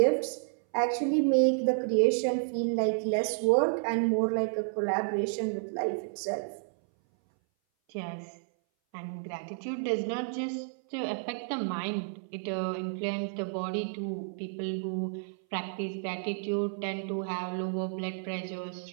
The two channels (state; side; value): silent; left; 57 dB below the other